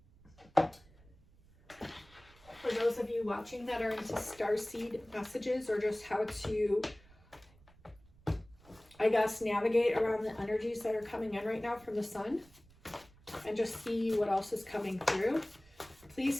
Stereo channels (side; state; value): right; noise; rumble, 26 dB below the sound